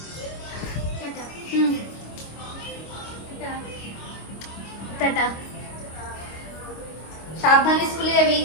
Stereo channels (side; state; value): right; late; 25 ms